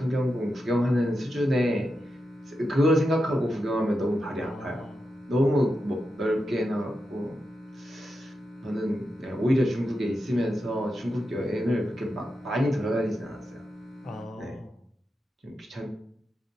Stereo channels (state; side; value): normal; both; correlation 0.88